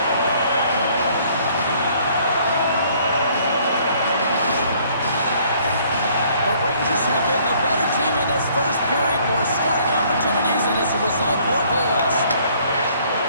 The Rangers have been the better team in this first period, more scoring opportunities, and as a result, more goals.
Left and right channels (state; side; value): inverted; both; correlation -0.61